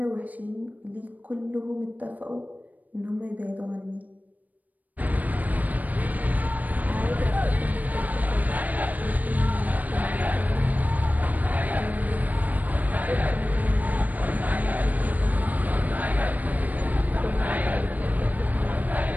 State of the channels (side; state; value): left; late; 0.079 ms